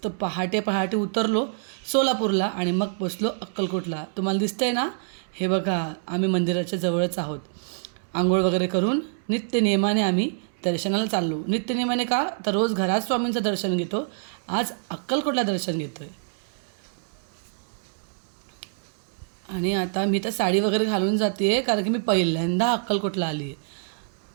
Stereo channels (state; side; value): silent; left; digital silence